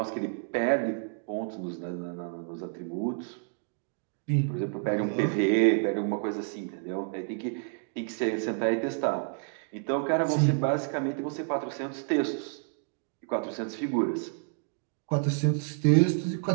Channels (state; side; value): silent; left; 58 dB below the other